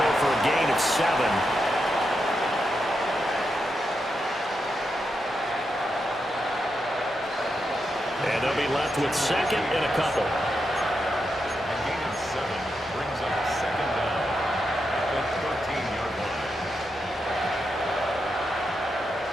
for a gain of 7. And they'll be left with second and a couple. A gain of 7 brings up second down at the 13-yard line.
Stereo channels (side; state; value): both; normal; correlation 0.85